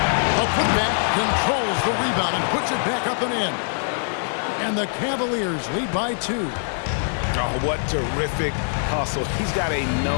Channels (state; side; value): silent; right; 63 dB below the other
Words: A putback controls the rebound and puts it back up and in. And the Cavaliers lead by 2. Oh, what terrific hustle. He's got a